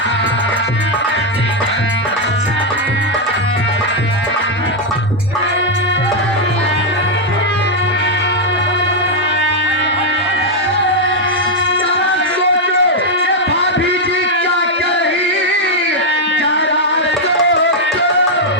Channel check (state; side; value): normal; both; correlation 0.00